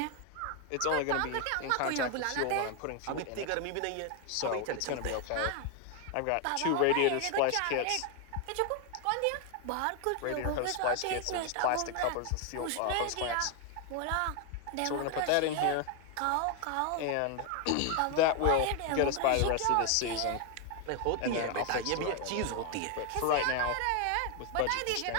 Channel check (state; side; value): different; both; correlation 0.01